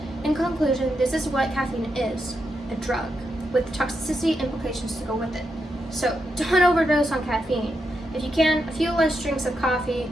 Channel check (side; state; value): both; normal; correlation 0.84